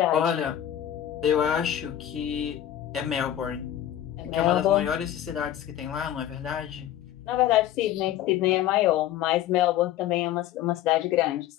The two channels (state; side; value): quieter; right; 11.9 dB